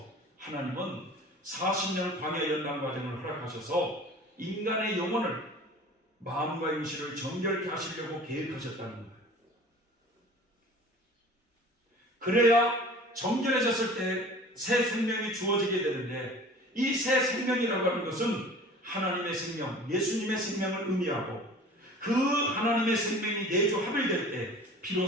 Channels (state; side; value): normal; both; correlation 0.43